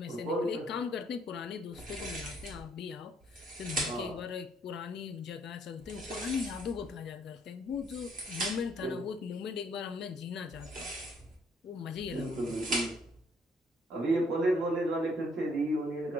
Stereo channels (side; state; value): both; normal; correlation 0.66